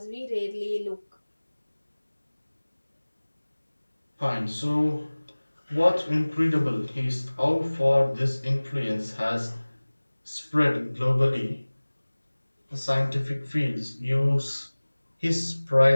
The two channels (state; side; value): inverted; both; correlation -1.00